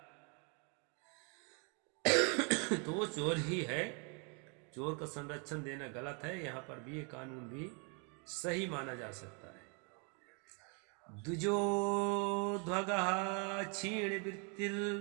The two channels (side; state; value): left; quieter; 35.8 dB